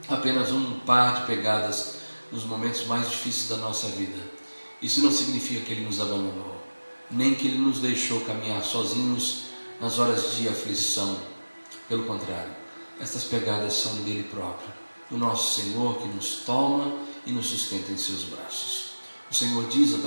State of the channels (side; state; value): both; inverted; correlation -1.00